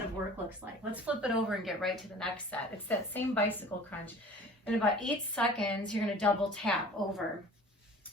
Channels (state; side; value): normal; both; correlation 0.44